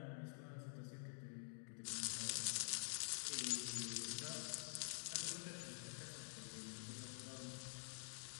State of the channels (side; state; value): right; silent; digital silence